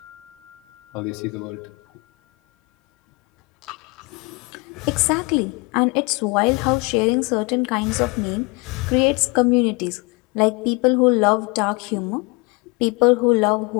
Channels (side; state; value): right; quieter; 28.0 dB